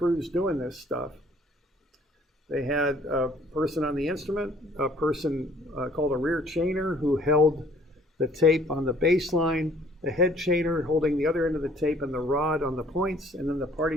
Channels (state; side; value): normal; both; correlation 0.57